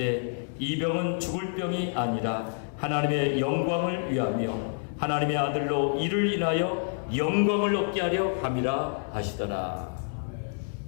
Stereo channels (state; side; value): silent; right; digital silence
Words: 이 병은 죽을 병이 아니라 하나님의 영광을 위하며 하나님의 아들로 이를 인하여 영광을 얻게 하려 함이라 하시더라.